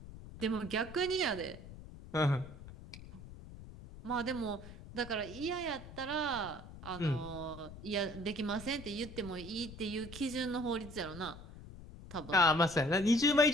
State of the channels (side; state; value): left; noise; rumble, 15 dB below the sound